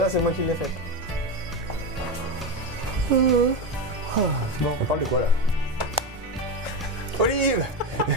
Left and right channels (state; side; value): normal; both; correlation 0.17